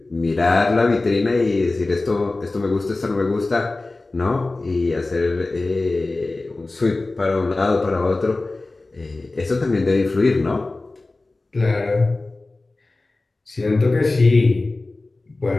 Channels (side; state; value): right; quieter; 3.2 dB